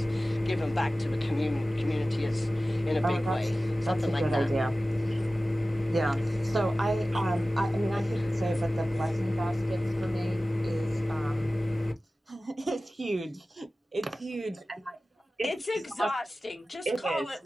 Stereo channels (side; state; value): both; normal; correlation 0.96